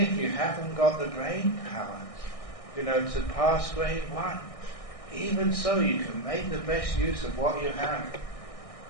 you haven't got the brain power, to pass grade 1, even so you can make the best use of what you have,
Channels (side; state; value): right; late; 1.6 ms